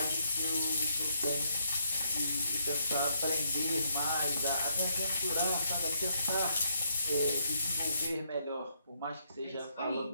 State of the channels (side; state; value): both; inverted; correlation -0.74